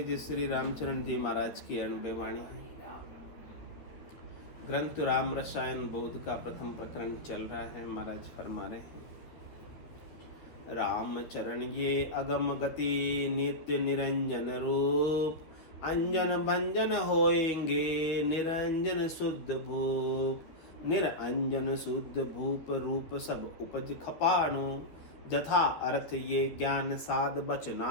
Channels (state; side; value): late; right; 12 ms